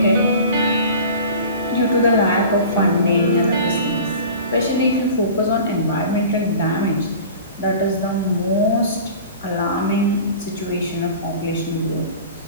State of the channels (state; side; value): inverted; both; correlation -0.40